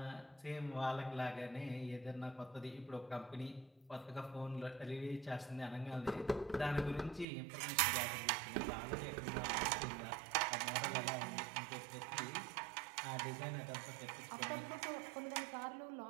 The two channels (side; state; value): left; drops out; at 7.2 s